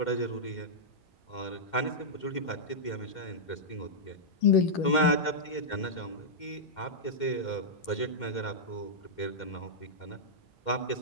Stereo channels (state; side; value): late; right; 2.1 ms